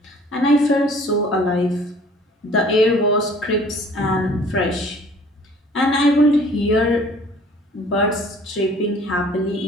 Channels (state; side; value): normal; both; correlation 0.52